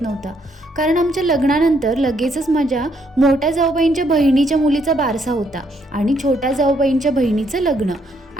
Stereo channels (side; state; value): both; normal; correlation 0.72